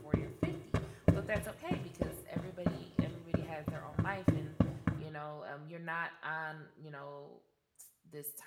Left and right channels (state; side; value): identical; both; correlation 1.00